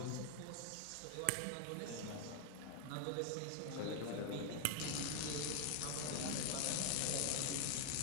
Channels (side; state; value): both; different; correlation 0.00